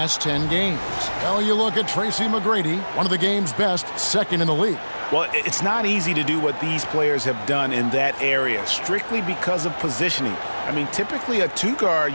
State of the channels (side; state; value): both; inverted; correlation -1.00